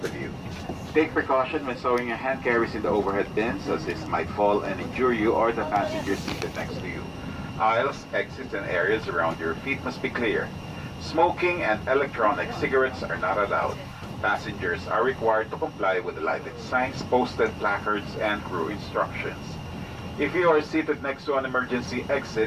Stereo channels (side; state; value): both; identical; correlation 1.00